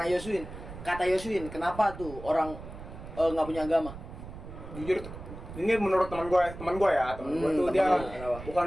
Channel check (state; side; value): noise; right; rumble, 12 dB below the sound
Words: Yosuin, kata Yosuin, kenapa tuh orang nggak punya agama? Jujur ini menurut teman gue ya, teman gue tuh teman dia lu, kenapa? bukan